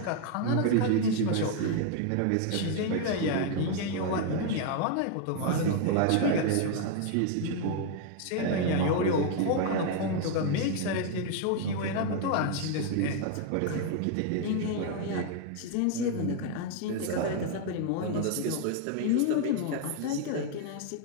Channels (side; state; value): both; different; correlation 0.00